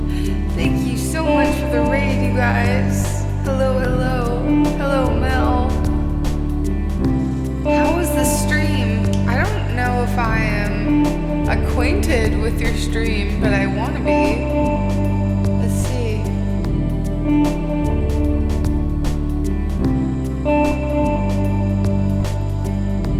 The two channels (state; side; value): identical; both; correlation 1.00